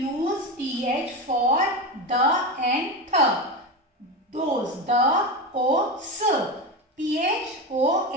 use TH for the and th. Those, the, o, s,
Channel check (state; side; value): normal; both; correlation 0.19